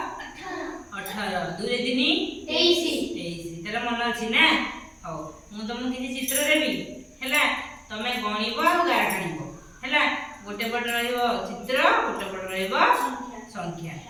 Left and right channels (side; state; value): both; identical; correlation 1.00